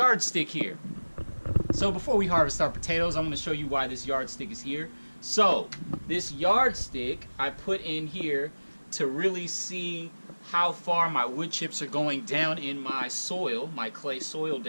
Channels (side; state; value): both; inverted; correlation -1.00